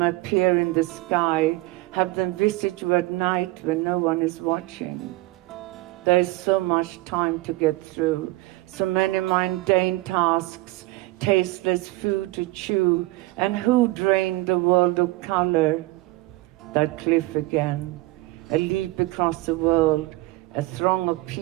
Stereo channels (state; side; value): quieter; left; 20.0 dB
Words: appear in the sky, have them visit you at night when no one is watching. There is so much time to get through, so many mundane tasks, tasteless food to chew, and who drained the world of color? That cliff again, a leap across the world, a throng of